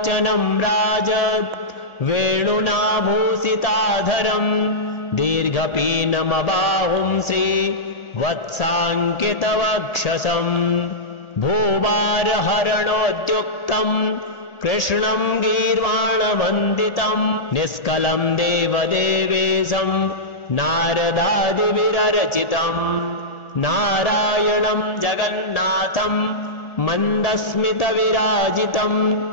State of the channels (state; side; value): late; right; 1.4 ms